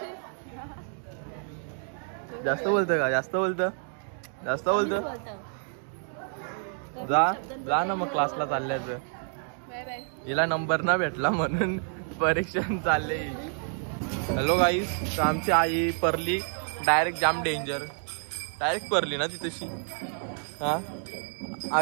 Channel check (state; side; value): silent; left; 59 dB below the other